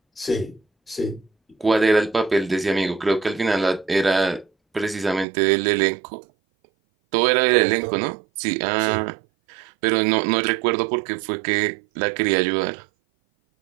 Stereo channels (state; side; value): drops out; left; at 5.2 s